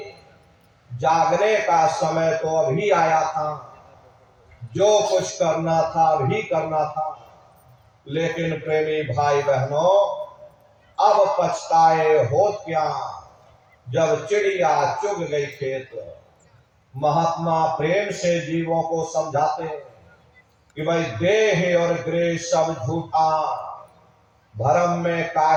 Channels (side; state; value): both; identical; correlation 1.00